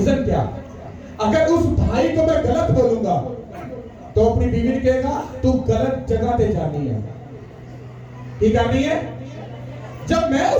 क्या? अगर उस भाई को मैं गलत बोलूंगा तो अपनी बीवी ने कहेगा तू गलत जगह पे जानी है। ये करनी है। जब मैं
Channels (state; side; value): identical; both; correlation 1.00